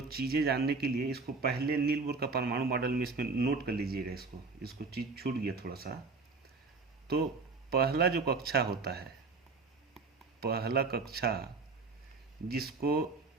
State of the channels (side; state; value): left; quieter; 4.2 dB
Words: चीज़ें जानने के लिए इसको पहले नील बोर का परमाणु मॉडल में इसमें नोट कर लीजिएगा। इसको चीज़ छूट गया थोड़ा सा। तो पहला जो कक्षा होता है, पहला कक्षा